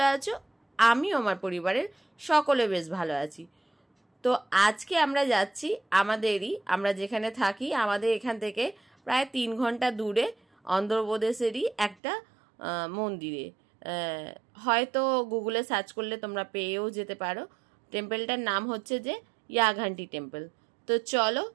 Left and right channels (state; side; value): drops out; left; at 12.0 s